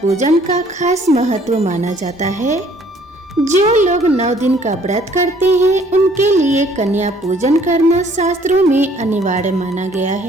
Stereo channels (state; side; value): normal; both; correlation 0.59